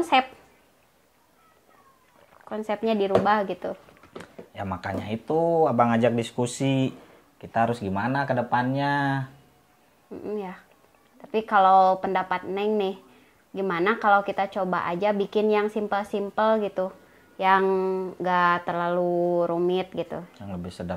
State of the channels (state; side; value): identical; both; correlation 1.00